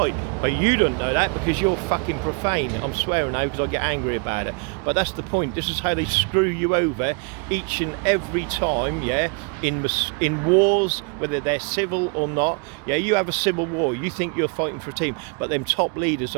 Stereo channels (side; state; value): left; quieter; 36.3 dB